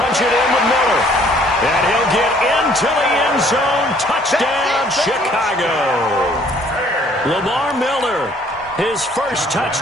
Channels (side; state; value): both; normal; correlation 0.59